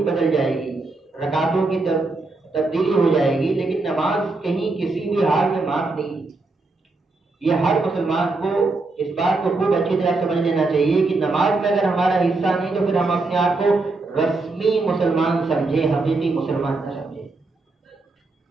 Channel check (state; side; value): quieter; left; 3.4 dB